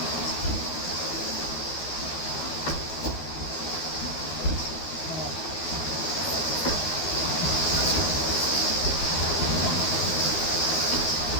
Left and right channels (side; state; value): right; late; 12 ms